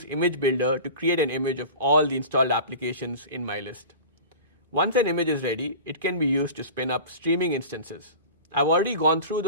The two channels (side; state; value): both; inverted; correlation -0.35